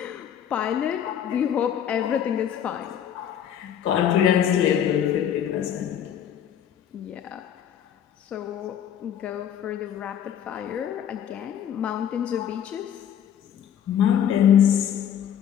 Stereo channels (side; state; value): right; quieter; 9.4 dB